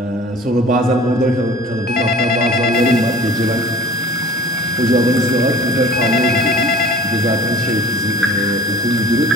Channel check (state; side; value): normal; both; correlation 0.43